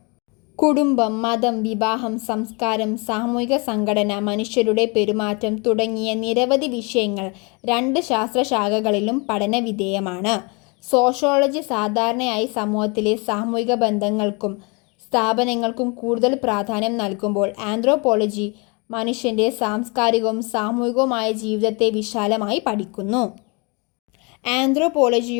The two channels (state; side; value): quieter; right; 30.6 dB